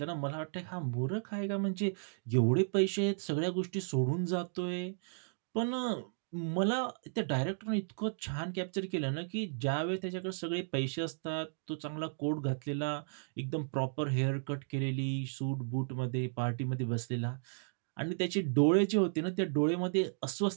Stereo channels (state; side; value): silent; left; digital silence